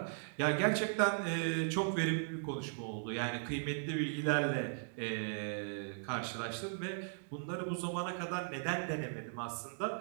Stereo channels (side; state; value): left; silent; digital silence